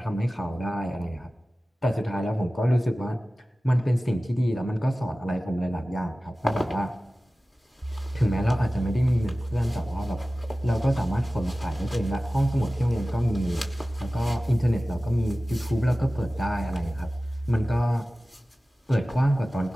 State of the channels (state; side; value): normal; both; correlation 0.96